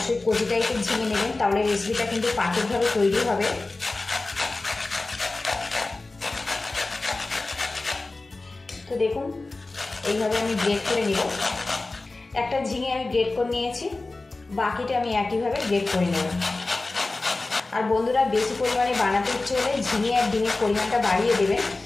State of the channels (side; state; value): right; quieter; 3.3 dB